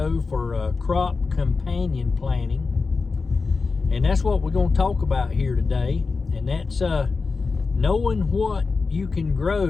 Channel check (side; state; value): right; quieter; 4.4 dB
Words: for crop companion planting, and that's what we're going to talk about here today. And that's knowing what you can